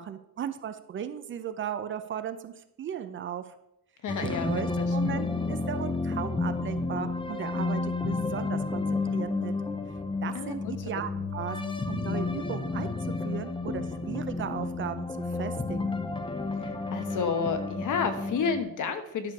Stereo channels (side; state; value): both; normal; correlation 0.46